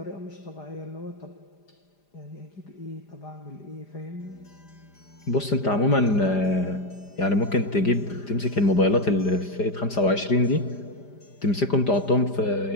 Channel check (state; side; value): late; right; 5.0 ms